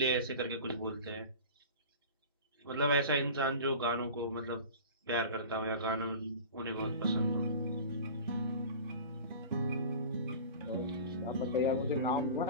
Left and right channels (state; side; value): inverted; both; correlation -0.36